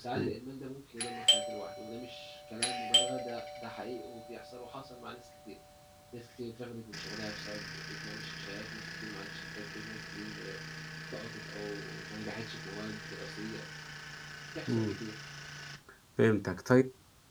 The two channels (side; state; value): both; identical; correlation 1.00